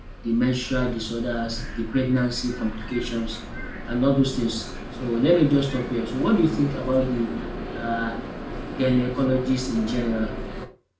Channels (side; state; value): both; identical; correlation 1.00